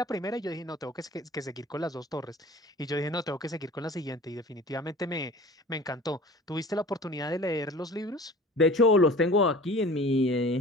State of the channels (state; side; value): normal; both; correlation 0.42